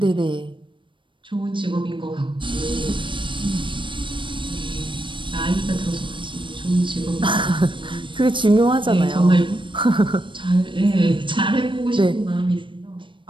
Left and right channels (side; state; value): left; late; 0.24 ms